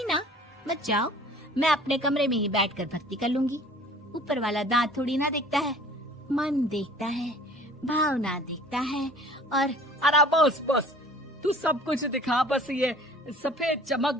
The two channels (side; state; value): both; normal; correlation 0.49